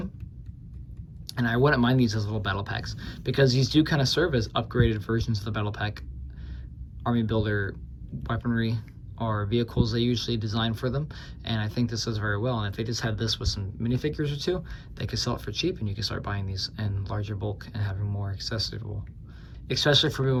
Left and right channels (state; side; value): identical; both; correlation 1.00